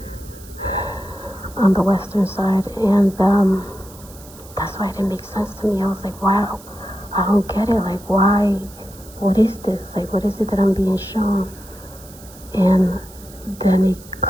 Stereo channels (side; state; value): right; noise; hiss, 21 dB below the sound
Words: on the western side. And that's why it didn't make sense to me. I was like, wow, I don't get it. Like, why? What is this? Like, what is it that I'm being shown? And then it